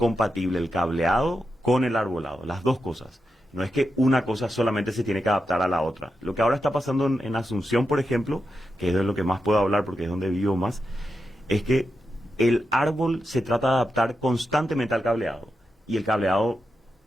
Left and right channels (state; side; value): normal; both; correlation 0.88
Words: el cableado con el arbolado, las dos cosas. No es que una cosa solamente se tiene que adaptar a la otra. Lo que ahora está pasando en Asunción, por ejemplo, que es de lo que más puedo hablar porque es donde vivo más, es que el árbol se trata de adaptar constantemente al cableado. Y el cableado